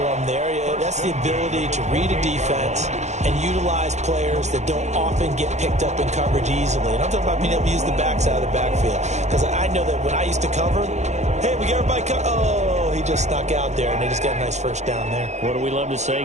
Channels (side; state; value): left; late; 0.33 ms